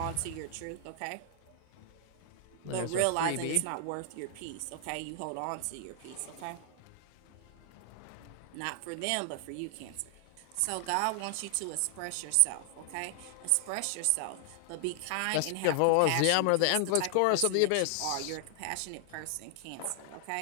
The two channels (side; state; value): both; different; correlation 0.00